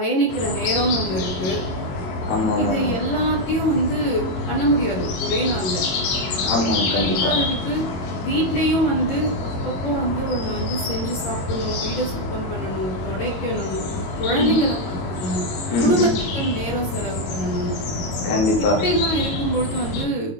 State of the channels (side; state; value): right; late; 22 ms